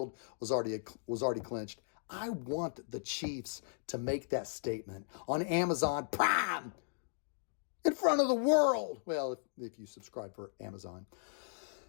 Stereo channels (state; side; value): silent; right; digital silence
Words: was already clinched. I want the Chiefs to make that statement on Amazon Prime in front of the world. Well, if you subscribe for Amazon.